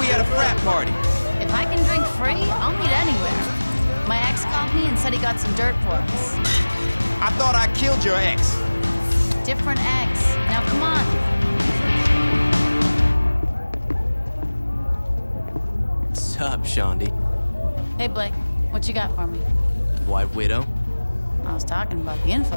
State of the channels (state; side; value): inverted; both; correlation -1.00